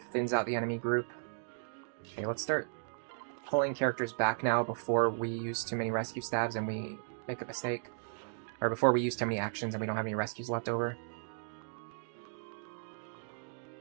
Thins out the enemy group. Okay, let's start pulling characters back now before we use too many rescue stabs and we make a mistake. Or before we use too many actions and we don't have any rescues left over.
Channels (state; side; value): silent; left; digital silence